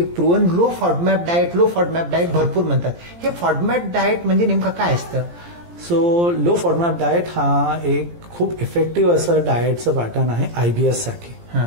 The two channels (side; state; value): left; late; 17 ms